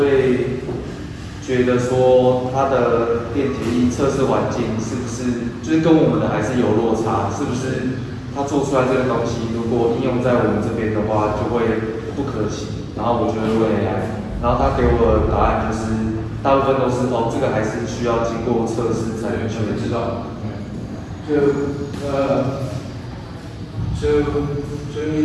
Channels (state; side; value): identical; both; correlation 1.00